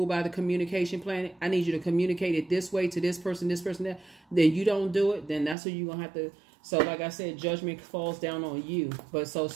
by the communication plan, I need you to communicate it this way to this person, that, then you don't do it, then that's what you're going to have to. So like I said, judgment falls down on you. But so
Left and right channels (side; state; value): left; drops out; at 5.6 s